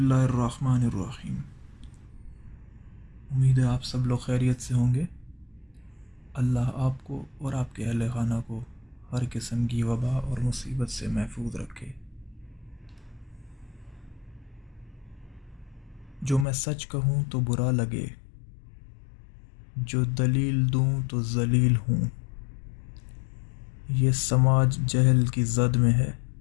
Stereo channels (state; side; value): drops out; right; at 16.4 s